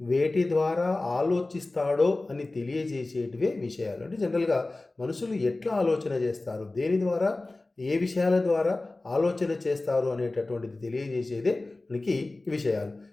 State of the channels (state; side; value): quieter; right; 3.0 dB